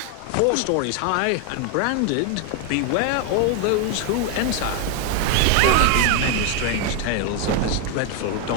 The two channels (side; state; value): both; different; correlation 0.01